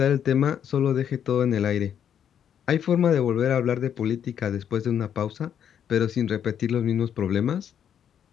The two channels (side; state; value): right; quieter; 8.9 dB